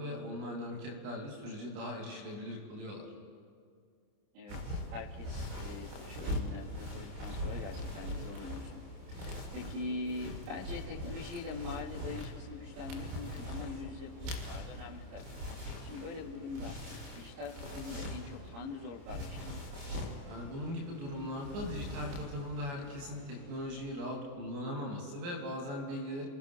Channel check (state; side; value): late; left; 30 ms